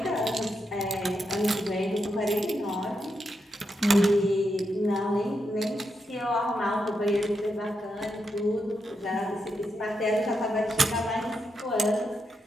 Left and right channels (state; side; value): normal; both; correlation 0.84